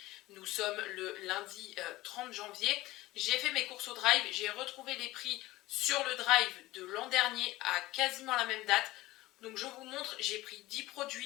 nous sommes le lundi 30 janvier. J'ai fait mes courses au drive, j'ai retrouvé les prix sur le drive de l'an dernier à quasiment la même date. Donc je vous montre, j'ai pris 10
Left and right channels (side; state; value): right; quieter; 18.0 dB